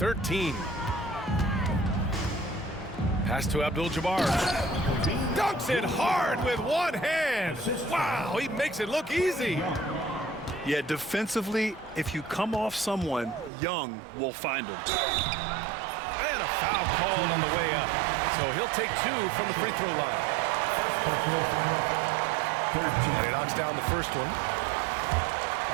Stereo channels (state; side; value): drops out; left; at 13.5 s